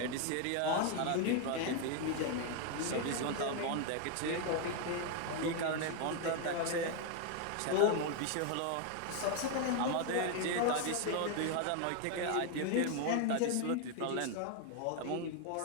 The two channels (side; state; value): both; different; correlation 0.01